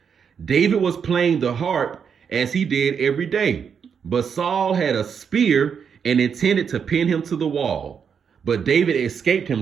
David was playing the harp as he did every day. But Saul had a spear and intended to pin him to the wall. But David escaped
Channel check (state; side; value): quieter; left; 6.9 dB